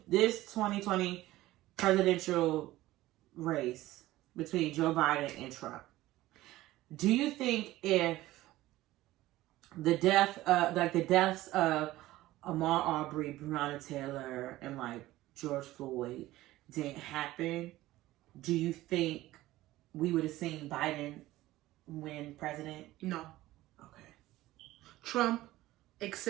2020 presidential race between Joe Biden and Trump, do you think if the deaths of Ahmaud Arbery, Breonna Taylor, and like George Floyd didn't happen, do you think we would have seen Biden win president? No. Okay. Trump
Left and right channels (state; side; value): quieter; left; 16.6 dB